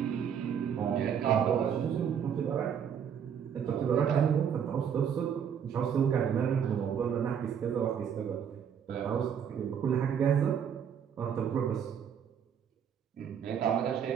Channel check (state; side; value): quieter; left; 8.0 dB